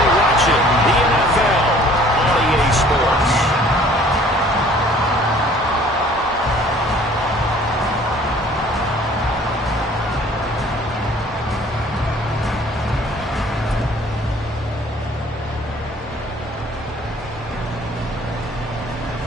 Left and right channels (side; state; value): both; normal; correlation 0.54